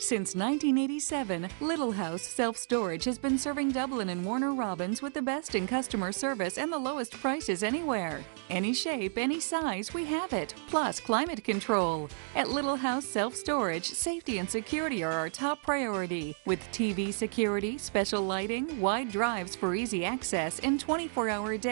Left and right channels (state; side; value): silent; left; digital silence